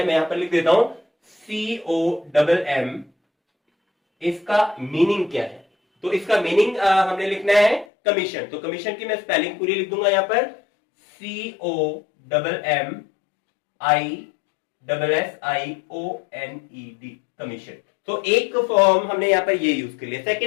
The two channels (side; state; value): right; drops out; at 7.9 s